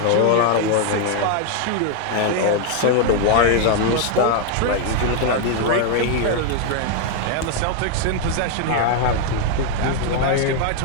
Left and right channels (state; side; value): different; both; correlation 0.00